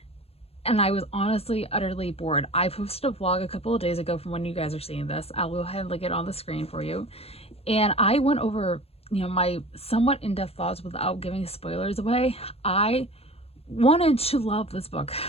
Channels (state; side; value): late; right; 0.29 ms